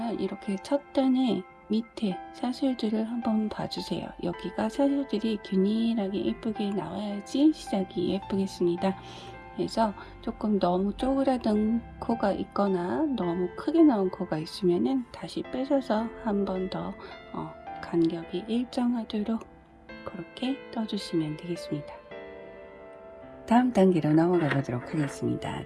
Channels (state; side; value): identical; both; correlation 1.00